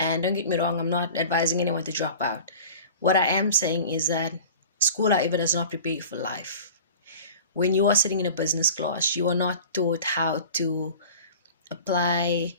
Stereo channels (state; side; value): inverted; both; correlation -0.39